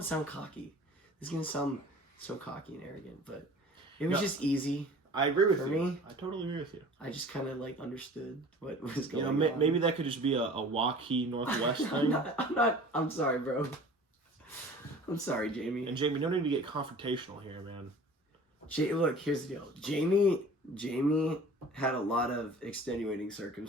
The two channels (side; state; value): both; normal; correlation 0.44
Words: to sound cocky. This is going to sound so cocky and arrogant, but it was just easy. I agree with For you. me, I totally agree with you. I just kind of like understood what was You going know, on. maybe that could just be a Waukee Northwest thing. I'm sorry, bro. I'm sorry, Jamie. And Jamie, no need to get confrontational here, man. Look, here's the deal. Jamie had a lot of extenuating